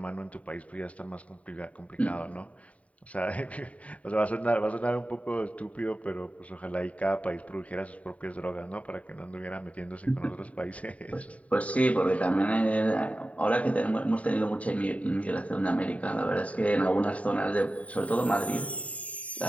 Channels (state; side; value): late; right; 0.067 ms